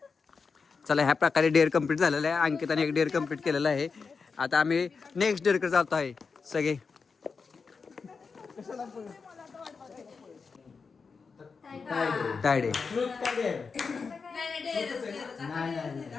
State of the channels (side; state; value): right; quieter; 5.1 dB